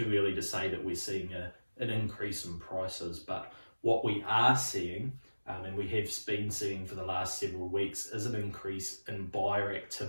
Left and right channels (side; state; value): both; inverted; correlation -1.00